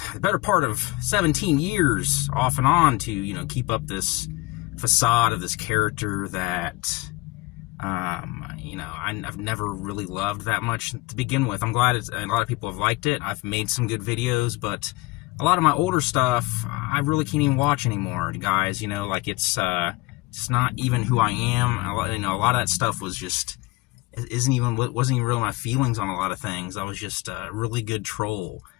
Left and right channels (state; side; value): quieter; right; 22.3 dB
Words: the better part of 17 years off and on to, keep up this facade of this character that, I've never really loved that much to begin with. I'm glad a lot of people have liked it. I've made some good videos, but a lot of my older stuff, I really can't even watch anymore, guys. It's not even who I am. A lot of that stuff was just, wasn't even really my feelings on a lot of things. I was just a really good troll.